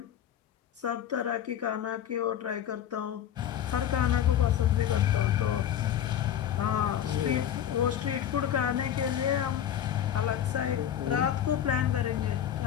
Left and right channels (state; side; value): quieter; right; 10.2 dB